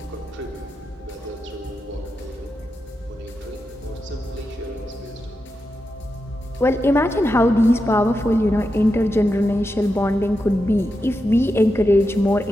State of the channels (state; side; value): normal; both; correlation 0.88